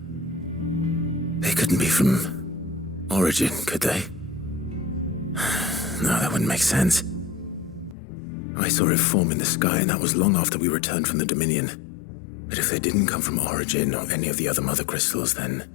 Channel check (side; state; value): right; drops out; at 8.0 s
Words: They couldn't be from Origin, could they? No, that wouldn't make sense. I saw it form in the sky, and that was long after we returned from the Dominion. But if they didn't come from Origin or any of the other mother crystals, then...